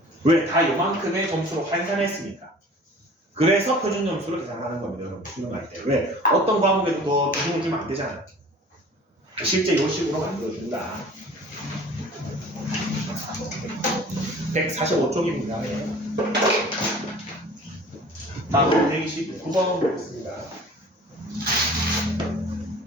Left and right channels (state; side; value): normal; both; correlation 0.45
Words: 왜? 다 요만큼의 점수로 환산했으니까. 그래서 표준 점수를 계산하는 겁니다. 여러분 수능할 때. 왜? 어떤 과목에도 더 비중을 주면 안 되잖아. 실제 요 식으로 만들어준다. 145쪽입니다. 네. 다음 129번 보겠습니다.